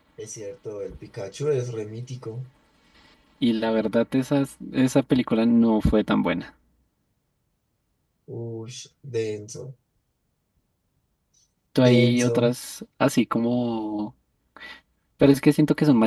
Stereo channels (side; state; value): both; identical; correlation 1.00